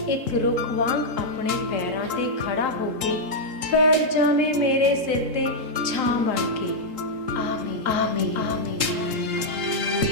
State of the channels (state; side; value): late; left; 3.8 ms